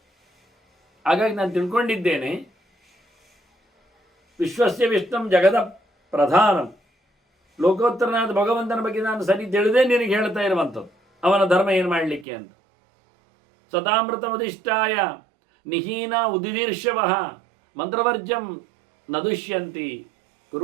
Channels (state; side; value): drops out; left; at 12.2 s